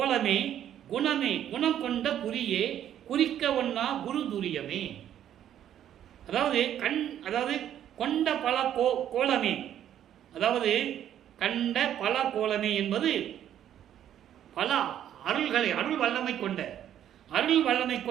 குணமே, குணம் கொண்ட குறியே, குறிக்க ஒன்னா குரு துரியமே. அதாவது கொண்ட பல கோலமே, அதாவது கண்ட பல கோலமே என்பது பல அருள்களை, அருள் வல்லமை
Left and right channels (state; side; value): quieter; left; 10.7 dB